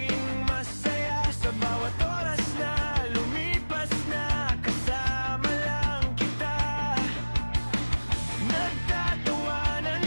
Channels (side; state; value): both; inverted; correlation -1.00